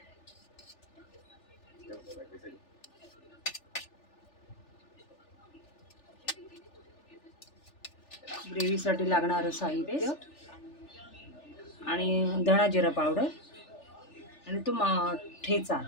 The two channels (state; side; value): late; right; 3.4 ms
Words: ग्रेव्हीसाठी लागणारं साहित्य आणि धणा जिरा पावडर आणि तो ठेचा.